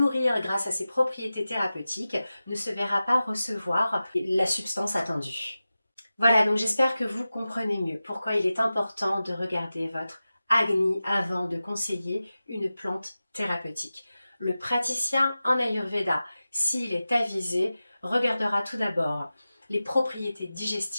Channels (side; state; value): both; inverted; correlation -0.95